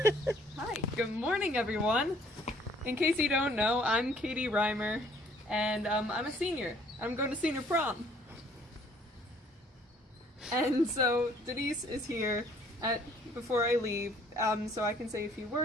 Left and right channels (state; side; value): normal; both; correlation 0.59